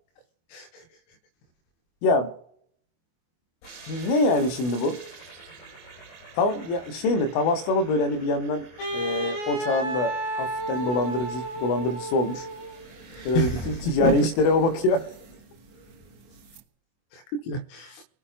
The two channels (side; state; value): right; late; 24 ms